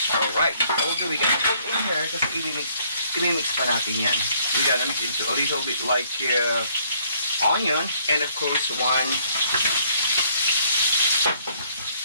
Alright, although we gonna put in here kasi i-mix pa natin yan. We gonna mix into a little bit like onion and of course 1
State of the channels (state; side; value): inverted; both; correlation -0.65